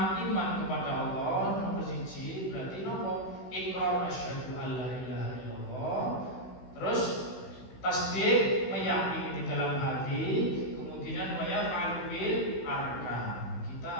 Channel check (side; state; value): right; late; 16 ms